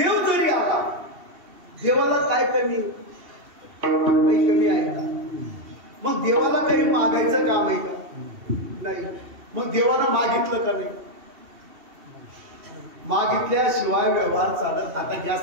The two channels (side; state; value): left; late; 2.7 ms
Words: काही कमी आहे का? मग देवाला काही मागायचं काम आहे का? नाही. मग देवाला मागितलं का नाही? मागितल्याशिवाय व्यवहार चालत. आता